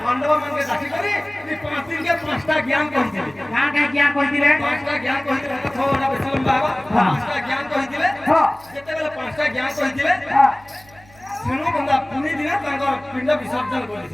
मन के डाकी करी 5 दिन के 5टा ज्ञान कहिथिले का ज्ञान कहिथिले 5टा ज्ञान कहिथिले तो थोड़ा बेसलम बाबा 5टा ज्ञान कहिथिले जेते बेले 5टा ज्ञान कहिथिले सेनु बंदा पुनी दिन तांकर पिंड विसर्जन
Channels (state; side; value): noise; right; hum, 26 dB below the sound